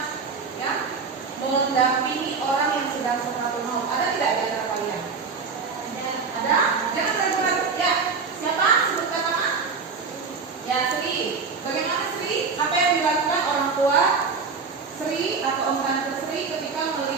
mendampingi orang yang sedang sakaratul maut? Ada tidak di antara kalian? Ada? Jangan ragu-ragu. Ya, siapa? Sebutkan nama. Ya, Sri. Bagaimana Sri? Apa yang dilakukan orang tua Sri atau om tante Sri ketika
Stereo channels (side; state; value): left; quieter; 5.0 dB